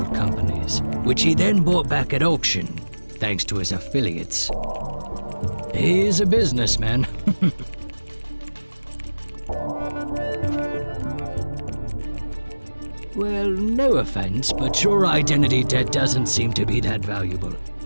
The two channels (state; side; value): inverted; both; correlation -1.00